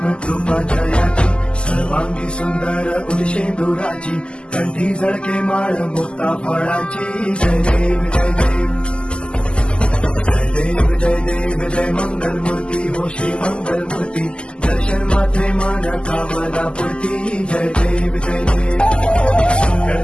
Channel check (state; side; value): late; right; 0.050 ms